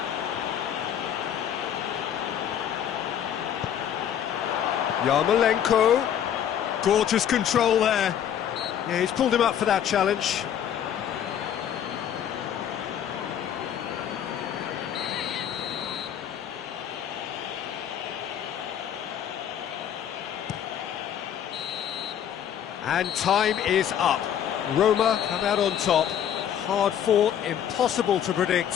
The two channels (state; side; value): quieter; right; 9.6 dB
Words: Yarmolenko, gorgeous control there. Yeah, he's pulled him up for that challenge. And time is up. Roma come out on top. Hard fought, impossible to